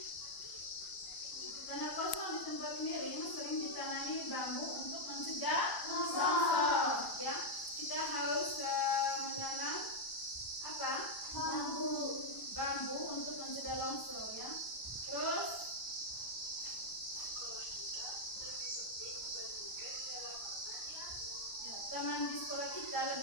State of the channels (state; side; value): late; right; 1.0 ms